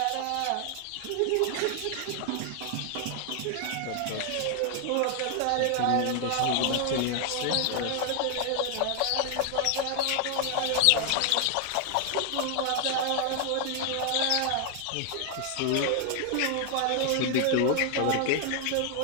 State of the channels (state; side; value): different; both; correlation 0.00